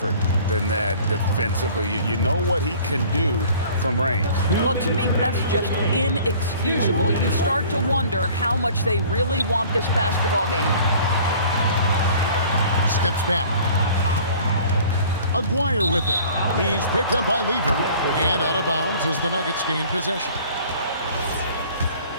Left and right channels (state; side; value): inverted; both; correlation -0.49